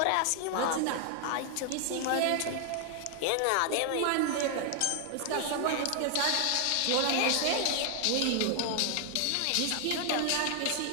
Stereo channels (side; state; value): both; different; correlation 0.00